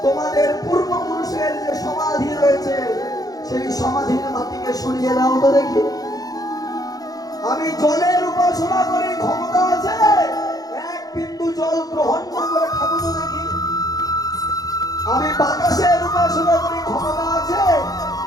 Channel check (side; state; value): right; late; 0.18 ms